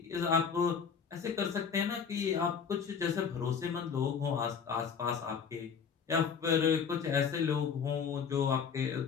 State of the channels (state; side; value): quieter; right; 6.6 dB